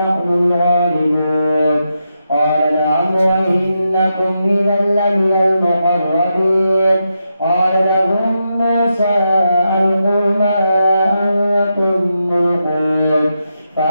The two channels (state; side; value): inverted; both; correlation -0.85